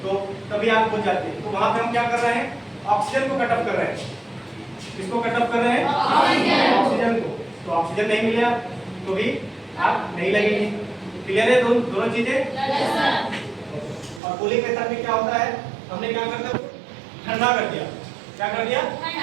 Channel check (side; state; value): left; drops out; at 14.2 s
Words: तो तभी आग बुझ जाती है। तो वहाँ पे हम क्या कर रहे हैं, ऑक्सीजन को कट ऑफ कर रहे हैं। किसको कट ऑफ कर रहे हैं, ऑक्सीजन को। तो ऑक्सीजन नहीं मिला तो भी आग नहीं लगेगी। क्लियर है दोनों चीजें। और कूलिंग मेथड में क्या होता है, हमने क्या कर दिया, ठंडा कर दिया। क्या कर दिया,